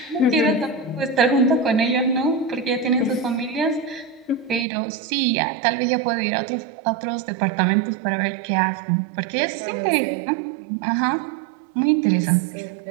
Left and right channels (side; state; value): left; drops out; at 4.7 s